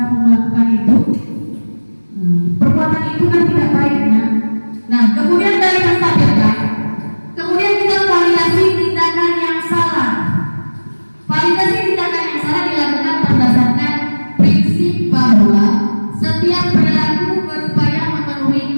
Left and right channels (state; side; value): inverted; both; correlation -1.00